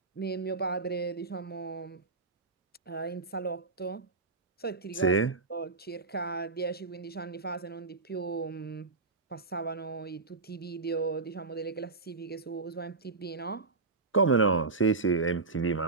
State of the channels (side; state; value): left; quieter; 4.0 dB